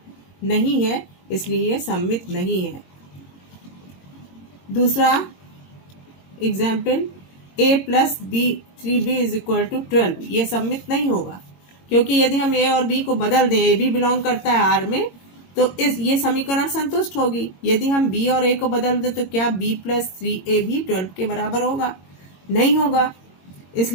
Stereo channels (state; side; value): late; right; 22 ms